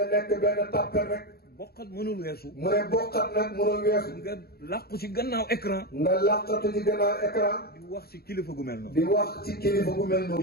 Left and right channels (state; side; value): late; right; 0.45 ms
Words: nekk benn tàppel rek boqat mënul weesu mu ne bokkat nag mënul weesu nga làqu ci gannaaw écran nga làqatu ci gannaaw écran di wax ci kilifa gu mel noonu di wax ci kilifa gu mel noonu